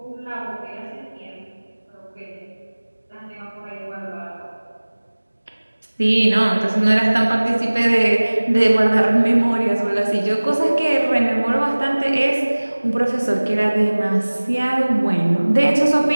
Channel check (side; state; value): both; inverted; correlation -1.00